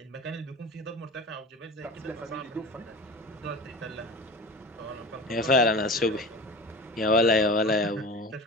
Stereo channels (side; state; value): both; normal; correlation 0.34